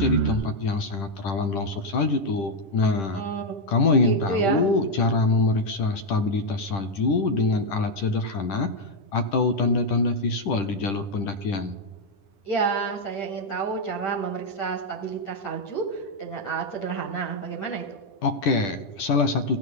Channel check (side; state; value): right; late; 10 ms